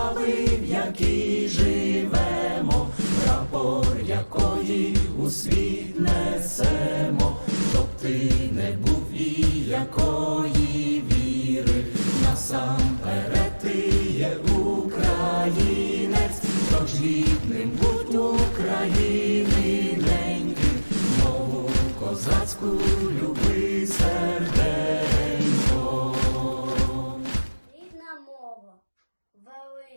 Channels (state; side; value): inverted; both; correlation -1.00